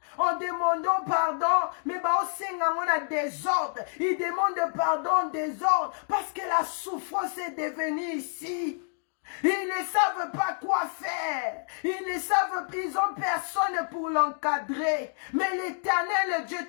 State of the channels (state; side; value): silent; right; 59 dB below the other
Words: en demandant pardon, mais on a désordre. Ils demandent pardon, désordre, parce que la souffrance est devenue ici. Ils ne savent pas quoi faire. Ils ont personne pour l'encadrer. Mais l'Éternel Dieu